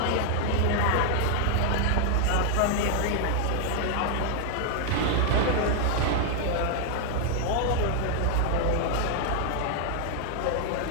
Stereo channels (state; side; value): different; both; correlation 0.00